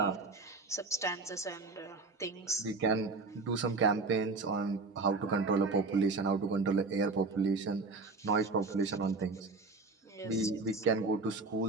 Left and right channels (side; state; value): left; quieter; 3.9 dB